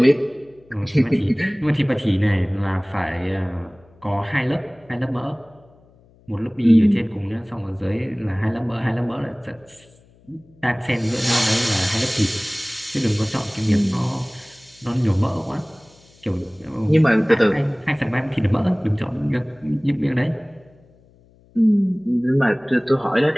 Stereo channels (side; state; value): left; noise; hum, 29 dB below the sound